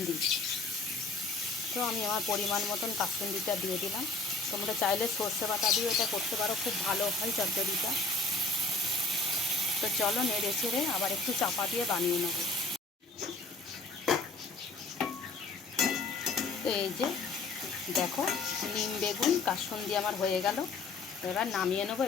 তো আমি আমার পরিমাণ মতন কাসুন্দিটা দিয়ে দিলাম। তোমরা চাইলে সর্ষে বাটা দিয়ে এটা করতে পারো, খুব ভালো হয় চচ্চড়িটা। তো চলো নেড়ে চেড়ে আবার একটু চাপা দিয়ে বানিয়ে নেব। তো এই যে দেখো, নিম বেগুন কাসুন্দি আমার হয়ে গেল। এবার নামিয়ে নেবো,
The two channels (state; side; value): quieter; right; 3.5 dB